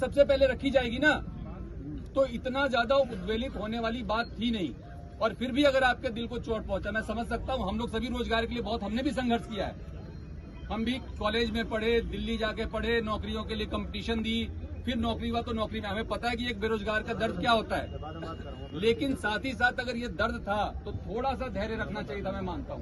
पहले रखी जाएगी ना। तो इतना ज्यादा उद्वेलित होने वाली बात थी नहीं। और फिर भी अगर आपके दिल को चोट पहुंचा, मैं समझ सकता हूं। हम लोग सभी रोजगार के लिए बहुत, हमने भी संघर्ष किया है। हम भी कॉलेज में पढ़े, दिल्ली जाके पढ़े, नौकरियों के लिए कंपटीशन दी, फिर नौकरी हुआ तो नौकरी में हमें पता है कि एक बेरोजगार का दर्द क्या होता है। लेकिन साथ ही साथ अगर ये दर्द था तो थोड़ा सा धैर्य रखना चाहिए था, मैं मानता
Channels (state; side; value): identical; both; correlation 1.00